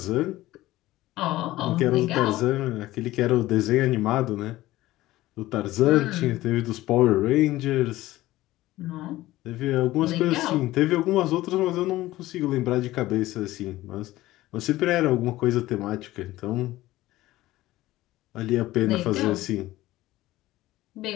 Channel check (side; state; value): right; quieter; 16.7 dB